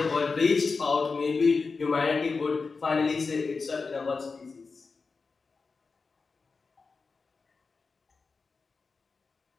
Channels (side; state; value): right; quieter; 4.5 dB